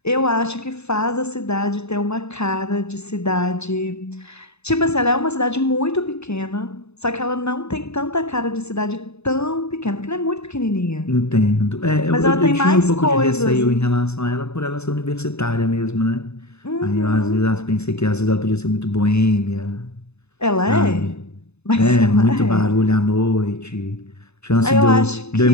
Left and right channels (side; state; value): right; late; 0.80 ms